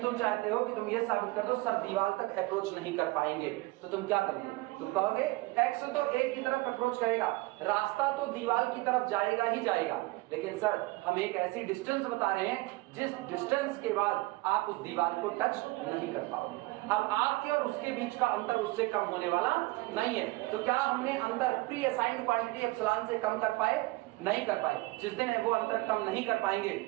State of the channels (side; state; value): left; quieter; 21.9 dB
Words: तुम चाहते हो कि तुम ये साबित कर दो सर दीवार तक अप्रोच नहीं कर पाएंगे, तो तुम क्या करोगे? तुम कहोगे एक्स तो a की तरफ अप्रोच करेगा, रास्ता तो दीवार की तरफ जाएगा ही जाएगा, लेकिन सर हम एक ऐसी डिस्टेंस बता रहे हैं जिस डिस्टेंस के बाद आप उस दीवार को टच नहीं कर पाओगे। अब आपके और उसके बीच का अंतर उससे कम होने वाला नहीं है, तो क्या हमने अंतर प्री असाइंड क्वांटिटी एप्सिलॉन से कम कर पाए? नहीं कर पाए। जिस दिन वो अंतर कम नहीं कर पाएंगे